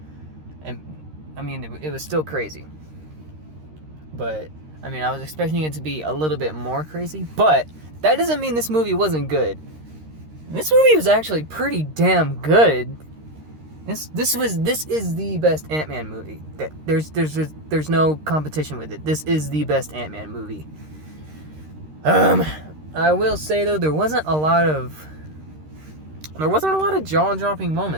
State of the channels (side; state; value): left; late; 13 ms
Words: And, I mean, it was still crazy. But, I mean, I was expecting it to be a little bit more crazy. But, that doesn't mean this movie wasn't good. This movie was actually pretty damn good. This is the best Ant-Man movie. There's no competition with it. This is the best Ant-Man movie. I will say though, there wasn't a lot of jaw-dropping